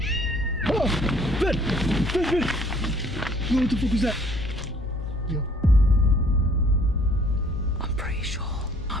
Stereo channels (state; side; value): normal; both; correlation 0.58